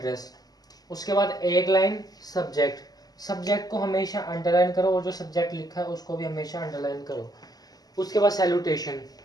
उसके बाद एक लाइन सब्जेक्ट। सब्जेक्ट को हमेशा अंडरलाइन करो और जो सब्जेक्ट लिखा है उसको भी हमेशा अंडरलाइन करो। उसके बाद सैल्यूटेशन,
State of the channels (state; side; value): late; right; 0.19 ms